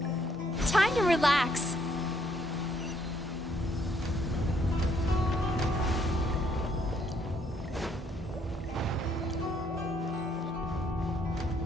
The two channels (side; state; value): both; normal; correlation 0.69